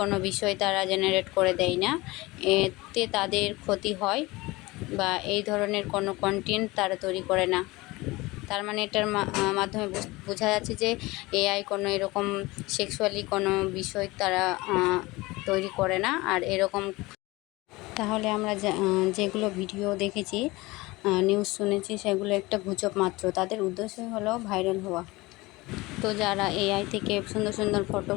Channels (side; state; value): right; quieter; 21.6 dB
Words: বিষয় তারা জেনারেট করে দেয় না, এতে তাদের ক্ষতি হয়, বা এই ধরনের কোনো কন্টেন্ট তারা তৈরি করে না। তার মানে এটার মাধ্যমে বোঝা যাচ্ছে যে এআই কোনো এরকম সেক্সুয়ালি কোনো বিষয় তারা তৈরি করে না। আর এরকম তাহলে আমরা যেগুলো ভিডিও দেখেছি, নিউজ শুনেছি, সেগুলো একটা গুজব মাত্র। তাদের উদ্দেশ্য হলো ভাইরাল হওয়া। তো যারা এআই থেকে সুন্দর সুন্দর ফটো